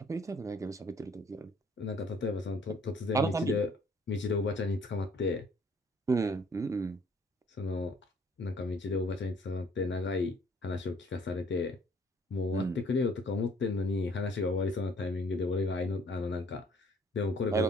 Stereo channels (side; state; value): both; normal; correlation 0.59